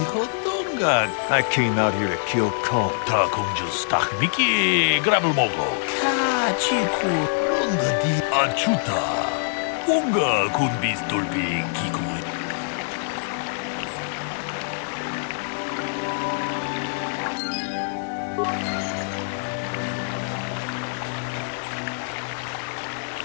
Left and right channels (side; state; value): right; silent; digital silence